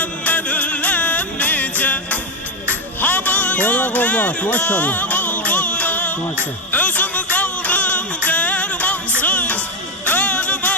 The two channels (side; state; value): both; normal; correlation 0.10